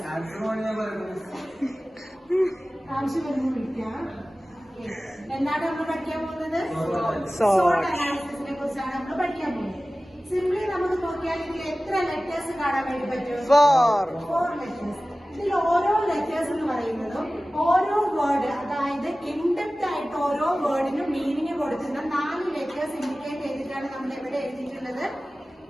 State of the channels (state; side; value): normal; both; correlation 0.96